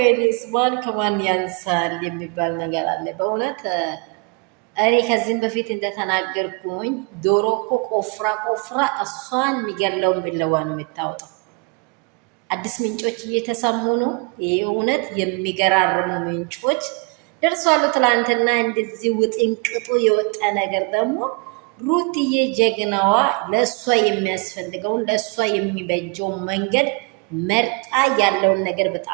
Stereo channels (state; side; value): quieter; left; 32.2 dB